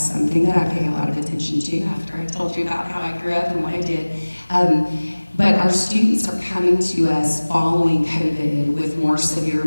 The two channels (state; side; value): inverted; both; correlation -1.00